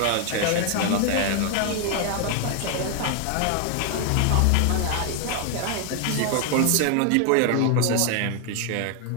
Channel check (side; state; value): both; different; correlation 0.00